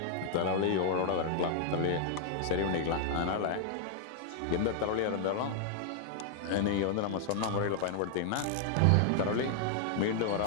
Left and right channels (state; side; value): different; both; correlation -0.01